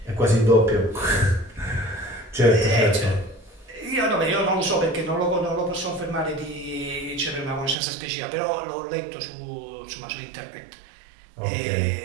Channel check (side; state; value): left; drops out; at 7.8 s